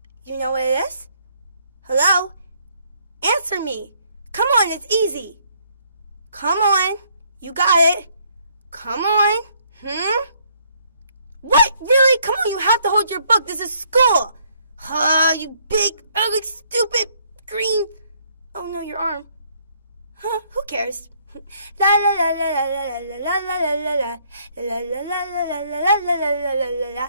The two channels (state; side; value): inverted; both; correlation -0.67